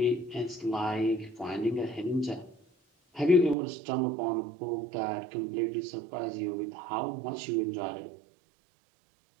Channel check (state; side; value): drops out; left; at 3.6 s